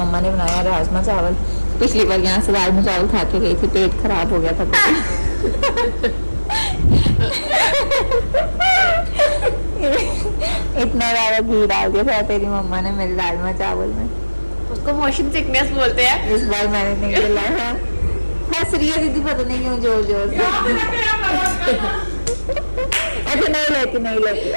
ने बनाया राजमा चावल। पिछली बार यहाँ से राजमा चावल खा के गई थी, पेट खराब हो गया था। इतना ज्यादा घी डाल दिया था तेरी मम्मा ने मेरे राजमा चावल में। उसको मोशन सिकनेस बोलते हैं। इस बार मैंने नहीं खिलाया। हंस रही है दीदी, पता नहीं क्यों जोर जोर से। अच्छा नहीं लेती इस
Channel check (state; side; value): inverted; both; correlation -1.00